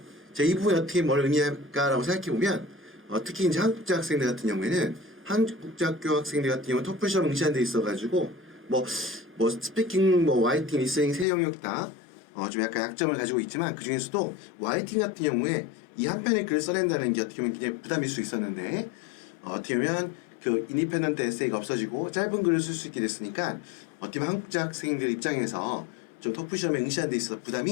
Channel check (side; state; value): right; drops out; at 11.2 s